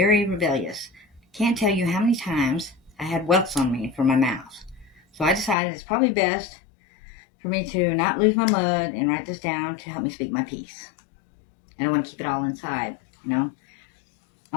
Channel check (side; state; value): right; drops out; at 5.6 s